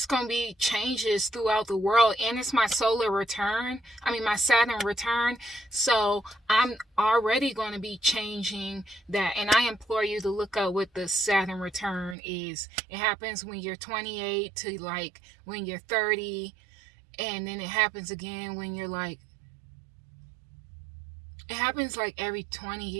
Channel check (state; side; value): drops out; left; at 12.2 s